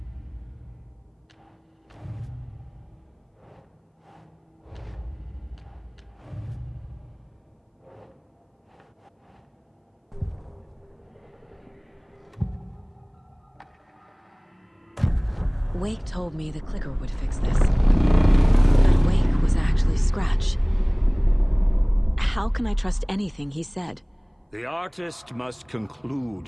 Wake told me the clicker would fix this. But Wake was actually Scratch. How can I trust anything he said? The artist must conclude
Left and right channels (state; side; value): identical; both; correlation 1.00